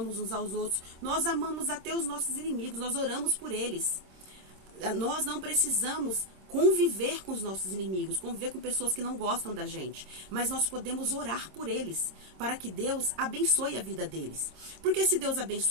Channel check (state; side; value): late; left; 26 ms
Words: uns aos outros, nós amamos até os nossos inimigos, nós oramos por eles. Nós não precisamos conviver com os nossos inimigos, conviver com pessoas que não gostam da gente, mas nós podemos orar por eles, para que Deus abençoe a vida deles. Porque se Deus